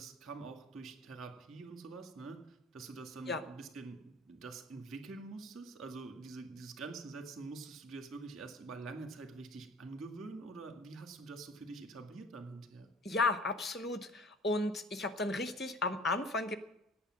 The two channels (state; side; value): normal; both; correlation 0.46